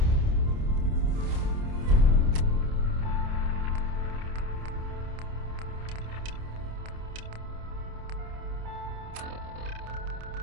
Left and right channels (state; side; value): late; left; 28 ms